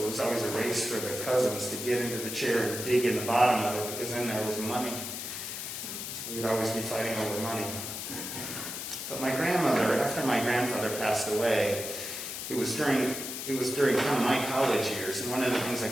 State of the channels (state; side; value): noise; left; hiss, 6 dB below the sound